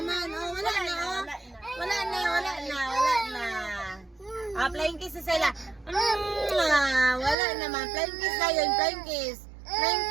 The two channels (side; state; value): left; drops out; at 7.4 s